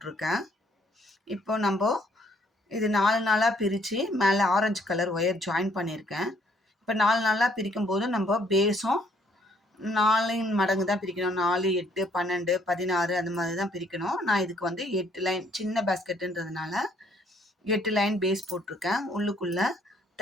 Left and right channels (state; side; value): normal; both; correlation 0.66